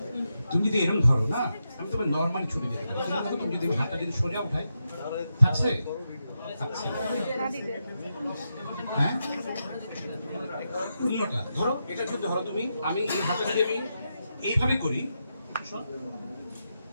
তুমি যদি এরকম ধরো না আমি তোমার নর্মাল ছুটি দিতে পারি কিন্তু তুমি যদি হাতটা যদি সোজা উঠাই থাকছে থাকছে হ্যাঁ উল্টোটা ধরো এটা যদি ধরো তুমি আমি এই হাতটা যদি আমি এইভাবে করি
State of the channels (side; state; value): both; inverted; correlation -0.86